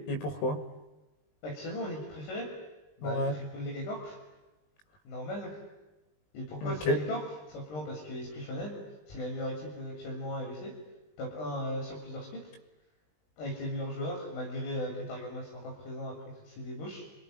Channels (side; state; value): right; late; 20 ms